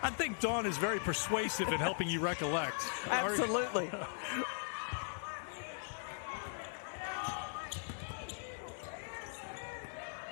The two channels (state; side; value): silent; right; 52 dB below the other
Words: I think Dawn is very persuasive in helping you recollect. Absolutely.